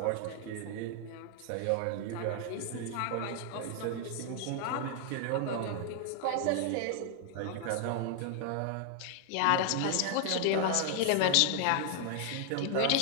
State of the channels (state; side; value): different; both; correlation 0.00